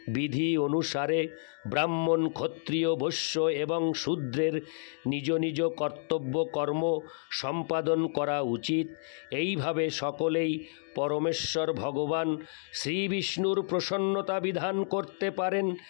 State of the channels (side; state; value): right; silent; digital silence